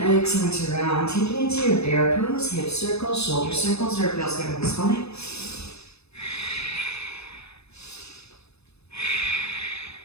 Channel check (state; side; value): late; right; 0.79 ms